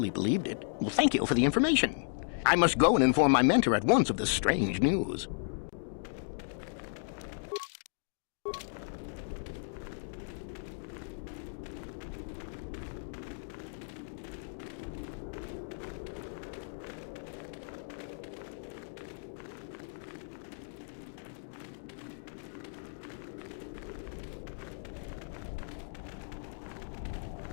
believed it. Well, thank you for the information. I must go and inform my mentor at once of this strange news.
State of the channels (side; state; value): right; silent; digital silence